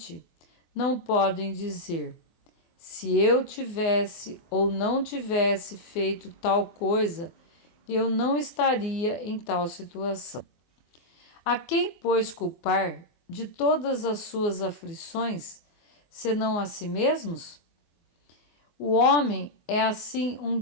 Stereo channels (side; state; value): right; late; 24 ms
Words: não podem dizer: se eu tivesse ou não tivesse feito tal coisa, eu não estaria em tal situação. A quem, pois, culpar de todas as suas aflições, senão a si mesmos? O homem é, assim,